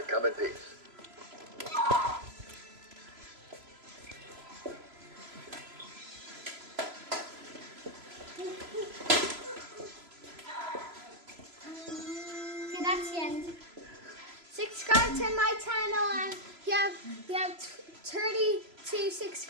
come in peace. Okay, that's the end. Subscribe to my channel and we have 32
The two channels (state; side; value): late; left; 3.0 ms